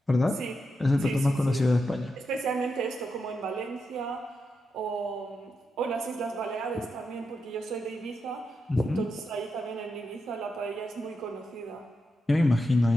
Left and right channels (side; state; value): both; normal; correlation 0.86